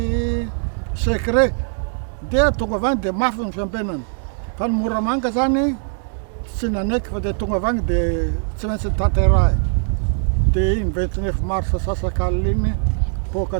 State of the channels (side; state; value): left; silent; 65 dB below the other